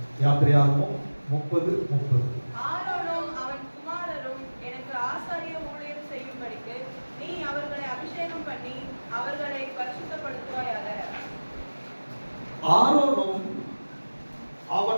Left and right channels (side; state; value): both; inverted; correlation -1.00